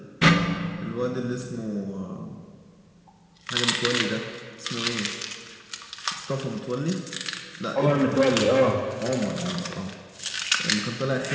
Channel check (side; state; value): both; identical; correlation 1.00